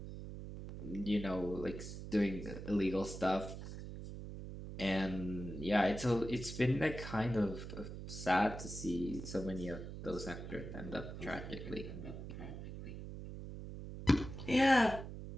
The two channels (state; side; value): noise; right; hum, 9 dB below the sound